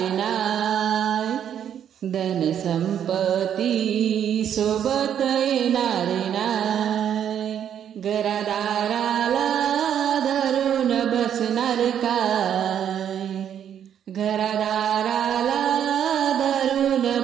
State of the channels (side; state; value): left; quieter; 9.3 dB